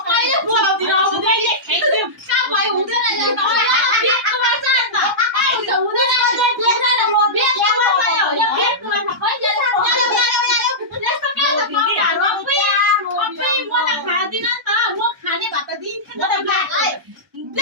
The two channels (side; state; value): both; normal; correlation -0.14